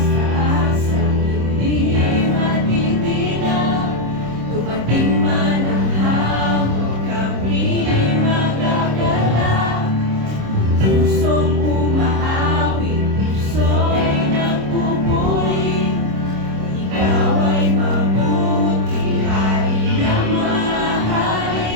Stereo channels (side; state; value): left; late; 26 ms